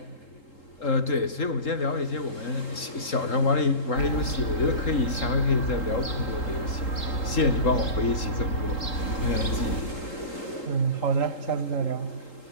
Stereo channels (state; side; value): late; right; 3.8 ms